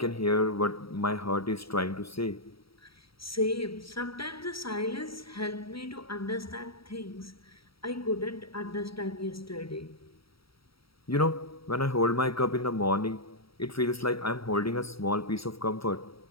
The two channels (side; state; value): right; late; 0.75 ms